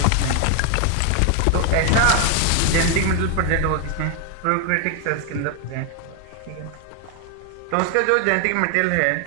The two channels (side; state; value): both; different; correlation 0.00